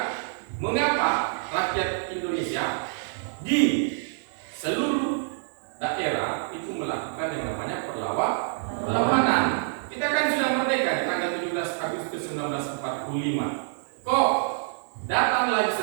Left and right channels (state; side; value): silent; left; digital silence